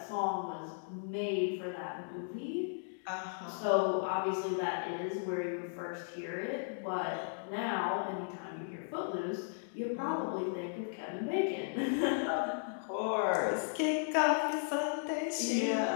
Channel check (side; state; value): right; silent; digital silence